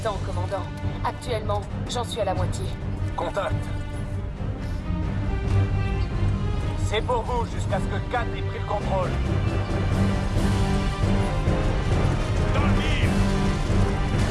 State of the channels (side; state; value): both; identical; correlation 1.00